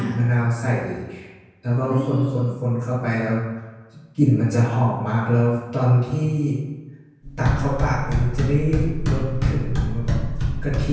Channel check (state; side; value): identical; both; correlation 1.00